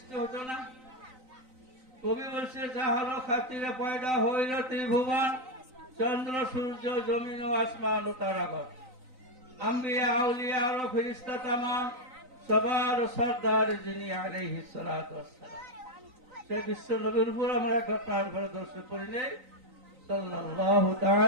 হতো না। কবি বলছে যাহার খাতিরে পয়দা হইল ত্রিভুবন, চন্দ্র সূর্য জমিন ও আসমান ও তারাগণ, আম্বিয়া আউলিয়া আর ফেরেশতা তামাম, সবার সরদার যিনি আলাইহিস সালাতু ওয়াস সালাম। সেই বিশ্ব নবীর উপর আমরা একবার প্রাণ ভরে দর্শন করি নেই সাল্লাল্লাহু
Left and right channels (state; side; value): late; left; 3.9 ms